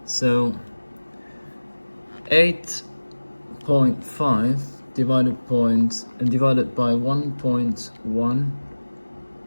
So 8.5 divided by 1.1.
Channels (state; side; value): inverted; both; correlation -1.00